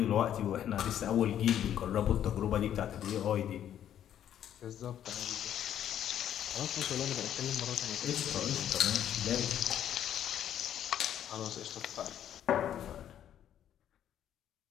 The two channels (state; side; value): quieter; right; 10.4 dB